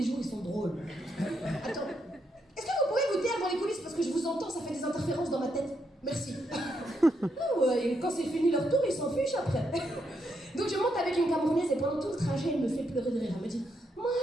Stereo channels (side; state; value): both; normal; correlation 0.79